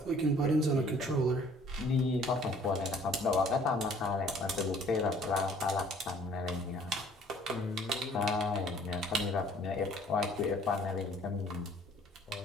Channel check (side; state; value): both; normal; correlation 0.56